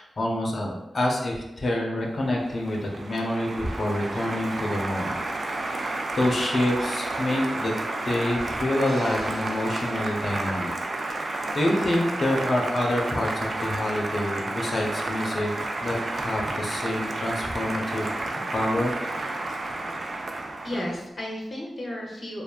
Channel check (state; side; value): normal; both; correlation 0.91